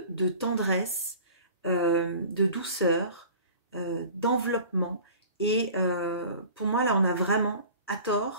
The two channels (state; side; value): inverted; both; correlation -0.43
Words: tendresse, de douceur, d'enveloppement. Et pour moi, là, on a vraiment